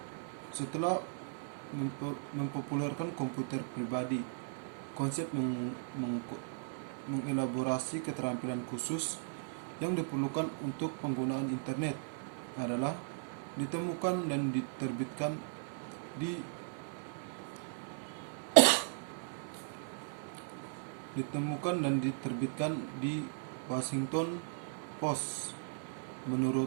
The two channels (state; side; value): silent; left; 53 dB below the other